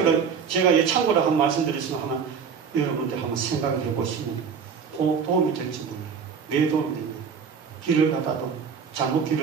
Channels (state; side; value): quieter; left; 6.4 dB